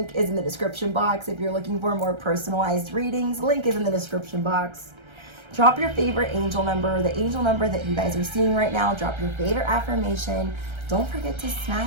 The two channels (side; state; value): left; late; 1.3 ms